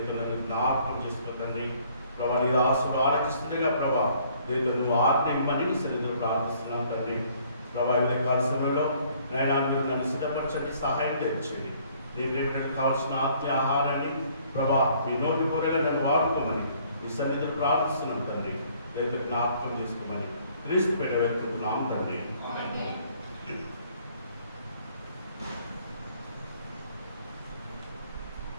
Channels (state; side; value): inverted; both; correlation -0.61